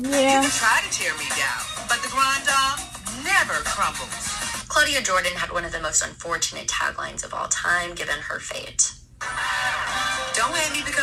You can try to tear me down, but the grand dame never crumbles. Claudia Jordan had one of the most unfortunate taglines of all time, given her fate. Don't hate me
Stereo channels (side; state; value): both; identical; correlation 1.00